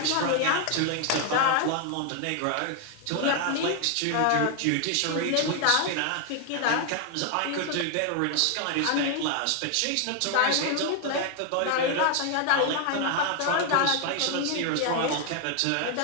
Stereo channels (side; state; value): both; different; correlation 0.00